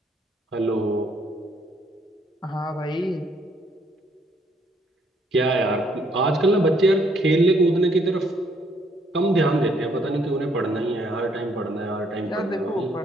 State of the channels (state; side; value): normal; both; correlation 0.68